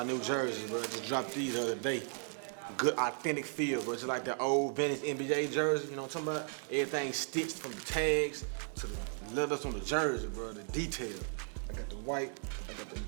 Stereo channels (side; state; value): left; silent; 54 dB below the other